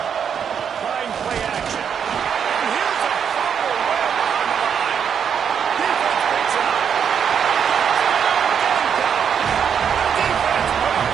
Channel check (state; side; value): quieter; left; 7.6 dB